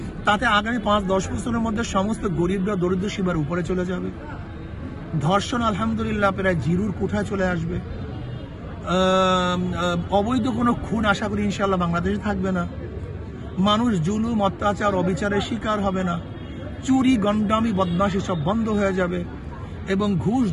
তাতে আগামী 5-10 বছরের মধ্যে সমস্ত গরিবরা দরিদ্র সীমার উপরে চলে যাবে। ধর্ষণ আলহামদুলিল্লাহ প্রায় জিরোর কোঠায় চলে আসবে। অবৈধ কোনো খুন আশা করি ইনশাল্লাহ বাংলাদেশে থাকবে না। মানুষ জুলুম অত্যাচার অবিচারের শিকার হবে না। চুরি গন্ডামি বদমাশি সব বন্ধ হয়ে যাবে এবং ঘুষ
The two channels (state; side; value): identical; both; correlation 1.00